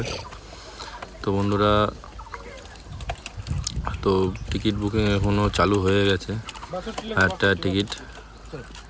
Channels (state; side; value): identical; both; correlation 1.00